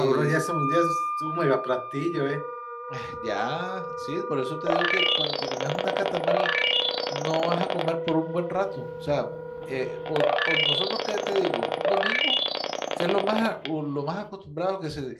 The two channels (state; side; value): identical; both; correlation 1.00